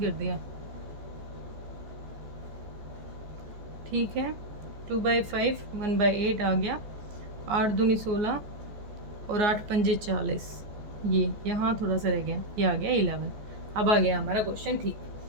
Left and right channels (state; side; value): late; left; 14 ms